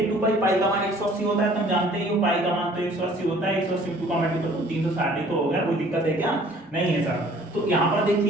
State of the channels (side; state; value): both; normal; correlation 0.54